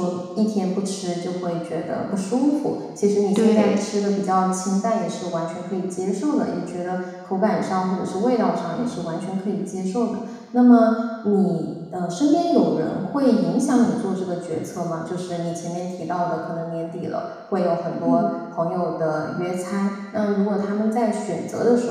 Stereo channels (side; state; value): both; identical; correlation 1.00